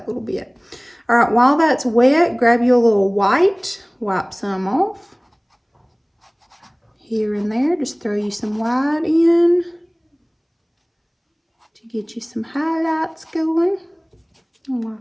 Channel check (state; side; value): identical; both; correlation 1.00